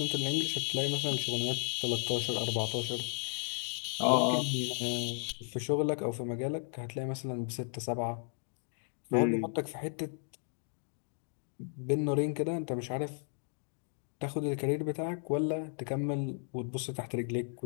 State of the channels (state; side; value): silent; right; 55 dB below the other